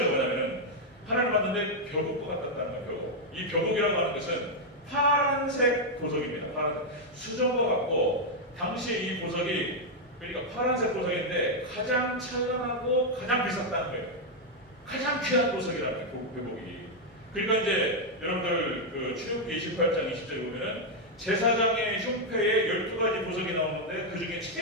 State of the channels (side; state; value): both; normal; correlation -0.01